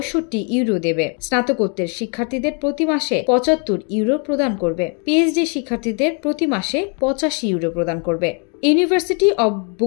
ইউরো দেবে। স্নাতকোত্তর শিক্ষার্থীদের প্রতি মাসে ৭৫ ইউরো প্রদান করবে। পিএইচডি শিক্ষার্থীদের প্রতি মাসে ৮৫ ইউরো প্রদান করবে। University of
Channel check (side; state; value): right; quieter; 37.4 dB